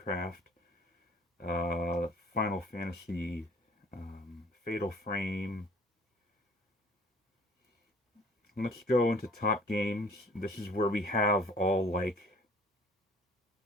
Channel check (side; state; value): both; normal; correlation 0.52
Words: Final Fantasy, Fatal Frame. Let's go into top games. This is where we have all like,